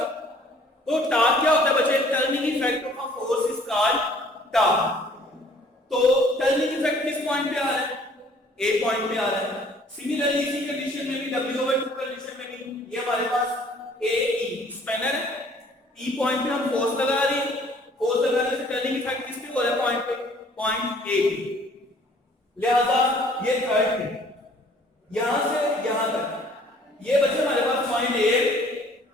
तो टार्क क्या होता है बच्चे, turning effect of a force is called torque. तो टर्निंग इफेक्ट किस पॉइंट पे आ रहा है, A पॉइंट पे आ रहा है। सिमिलरली इसी कंडीशन में भी W/2 कंडीशन में भी ये हमारे पास AE स्पैनर है, E पॉइंट पे हम फोर्स लगा रहे हैं, फोर्स लगाने से टर्निंग इफेक्ट किस पे हो रहा है, पॉइंट पे, पॉइंट A पे। लिहाजा ये थर्ड है, यहां से यहां तक ये बच्चे हमारे पास पॉइंट A,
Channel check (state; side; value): normal; both; correlation 0.56